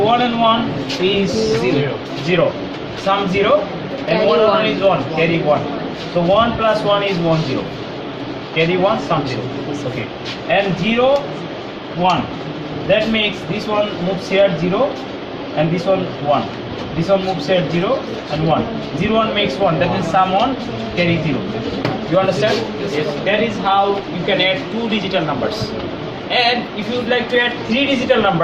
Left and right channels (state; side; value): identical; both; correlation 1.00